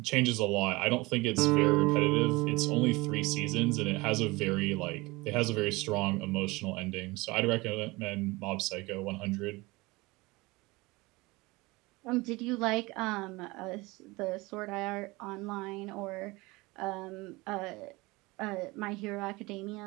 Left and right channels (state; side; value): quieter; left; 22.8 dB